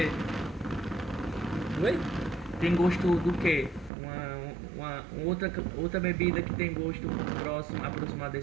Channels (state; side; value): drops out; left; at 3.9 s